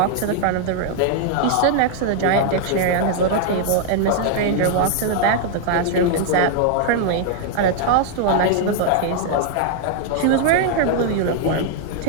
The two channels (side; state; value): both; different; correlation 0.00